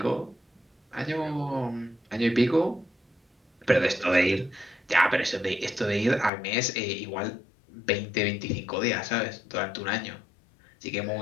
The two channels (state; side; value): drops out; right; at 6.3 s